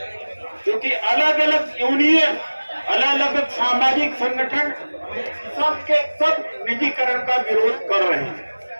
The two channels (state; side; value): inverted; both; correlation -1.00